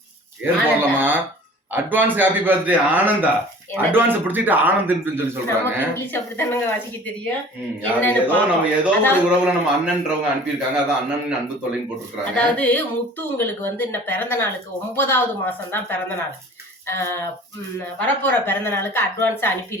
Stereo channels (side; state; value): both; normal; correlation 0.46